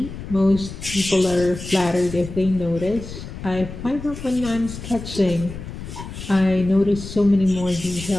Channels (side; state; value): left; noise; rumble, 11 dB below the sound